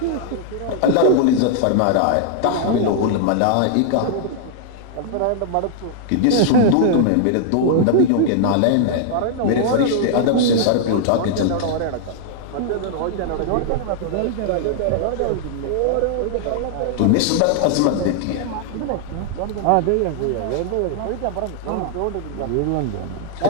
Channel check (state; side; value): different; both; correlation -0.01